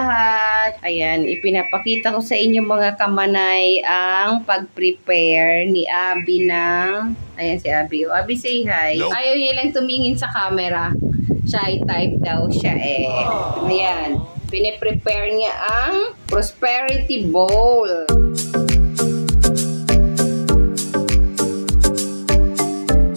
Ayan, ipinapakita ko sa inyo mga kamanay ang pag-prepare ni Abby ng... Ayan si Abby. Abby, say hi. Nope. Ayaw niya lang tumingin sa camera. Shy type daw siya eh. Ayan. Pine-prepare niya ang prosperity bowl.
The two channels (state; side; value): inverted; both; correlation -1.00